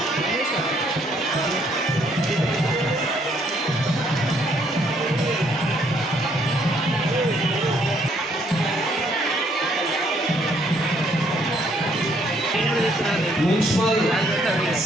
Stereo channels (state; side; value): normal; both; correlation 0.68